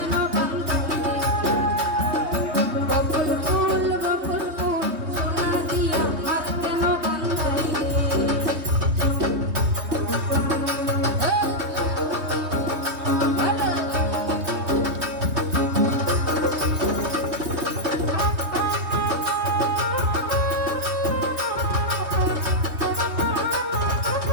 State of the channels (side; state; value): left; late; 3.2 ms